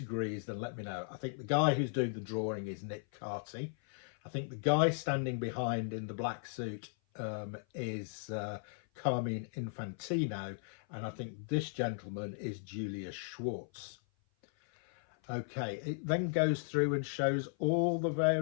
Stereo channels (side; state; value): right; silent; 53 dB below the other